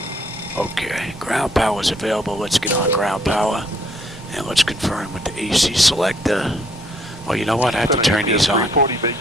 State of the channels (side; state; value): both; normal; correlation 0.66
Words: Okay, ground power is available. Let's get on ground power. And let's confirm with the AC selector. Well, you know what? I have to turn these on.